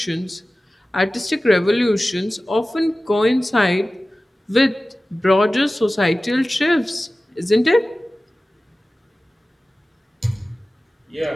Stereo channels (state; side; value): normal; both; correlation 0.96